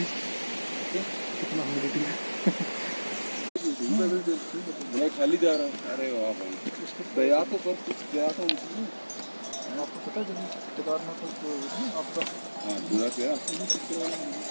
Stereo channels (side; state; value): both; inverted; correlation -1.00